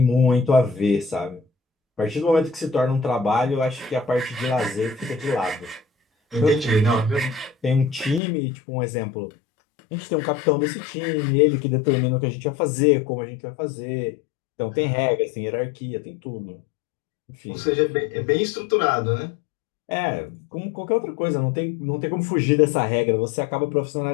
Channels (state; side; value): drops out; right; at 8.2 s